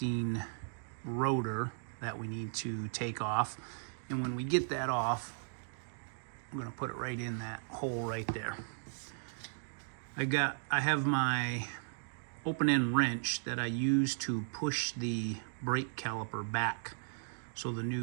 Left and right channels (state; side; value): silent; left; digital silence